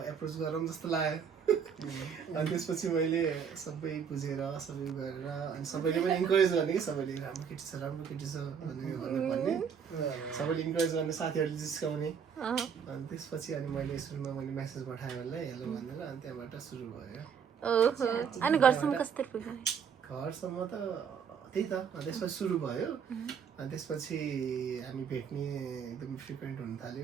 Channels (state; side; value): quieter; left; 7.1 dB